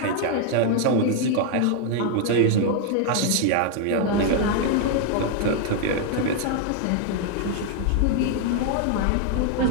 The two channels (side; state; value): both; different; correlation 0.00